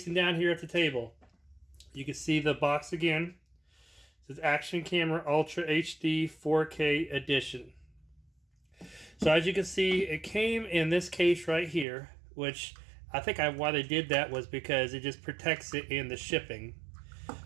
down here at the table. You can see the box again. It says Action Camera Ultra HD 4K Edition. So as you can see, it came in this case right here, which I think why they did that was because it just protects it in the shipping.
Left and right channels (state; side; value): drops out; left; at 11.9 s